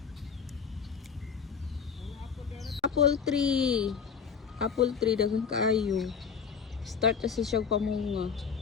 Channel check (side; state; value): right; quieter; 6.5 dB